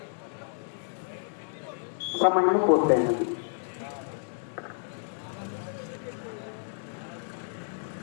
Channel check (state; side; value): silent; right; digital silence